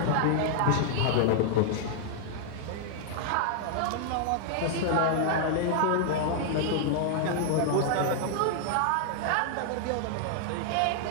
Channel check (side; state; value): both; different; correlation -0.01